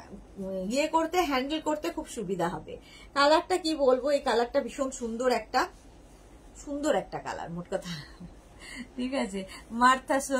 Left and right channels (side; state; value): both; identical; correlation 1.00